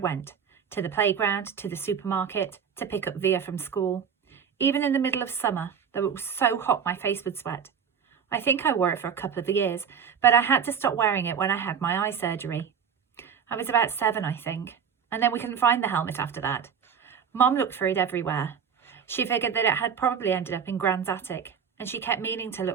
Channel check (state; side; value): quieter; left; 7.2 dB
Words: to the playground, to the supermarket, to pick up Via from school. Even in the middle of summer, though it was so hot my face would sweat. I think I wore it for a couple of years, but I had to stop wearing it when I had my eye surgery. I was about 7, I think, and then we couldn't find the helmet after that. Mom looked for it everywhere. She figured that it had probably ended up in Gran's attic, and she kept meaning to